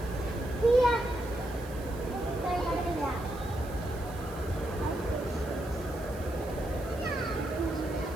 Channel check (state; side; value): noise; right; hiss, 20 dB below the sound